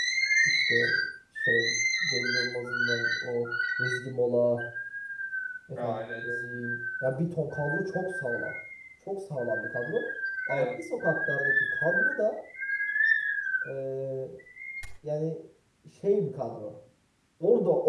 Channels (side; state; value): both; identical; correlation 1.00